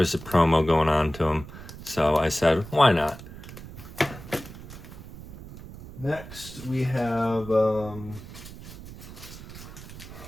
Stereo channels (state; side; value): noise; right; rumble, 14 dB below the sound